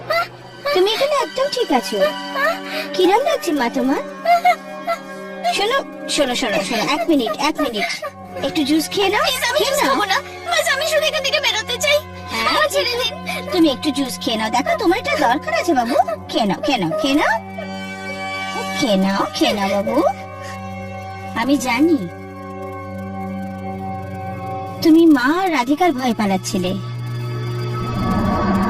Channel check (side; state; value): both; identical; correlation 1.00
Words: তুমি এখানে একদম ঠিক আছো। কিরম লাগছে মা তোমার? শোনো শোনো শোনো শোনো, এক মিনিট একটু জুস খেয়ে নাও। আমি শুধু এখান থেকে বেরোতে চাই। হ্যাঁ, ছেড়ে দিন। তুমি একটু জুস খেয়ে নাও, দেখো তোমার এটা দরকার আছে বাবু। খেয়ে নাও বাবু। আমি জানি তুমি মা আর রাধিকার ভয় পালাচ্ছিলে।